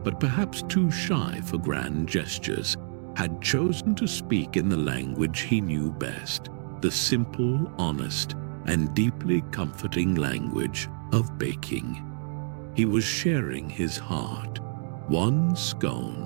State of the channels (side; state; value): left; silent; digital silence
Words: but perhaps too shy for grand gestures, had chosen to speak in the language he knew best, the simple, honest, and deeply comforting language of baking. He was sharing his heart, one